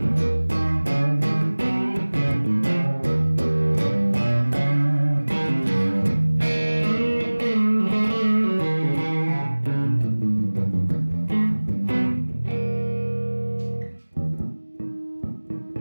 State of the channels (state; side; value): inverted; both; correlation -1.00